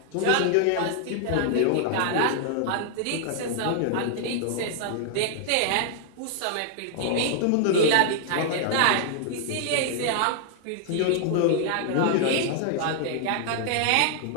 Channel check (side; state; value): both; different; correlation 0.00